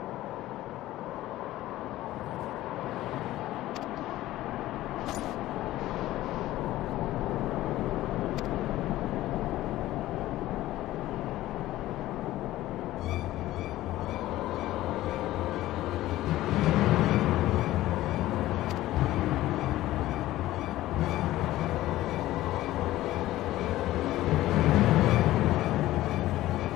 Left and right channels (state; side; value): quieter; right; 15.6 dB